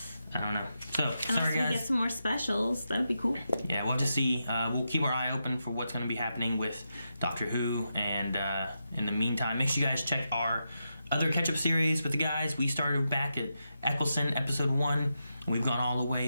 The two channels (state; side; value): inverted; both; correlation -0.86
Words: I don't know. So, sorry guys. We get some more specials. That'd be cool. Yeah, we'll have to see. We'll keep our eye open for what's going to be happening with Doctor Who. And in the meantime, make sure you guys check our other catch-up series with the guys. We started back at Eccleston, episode 1. And we've gone all the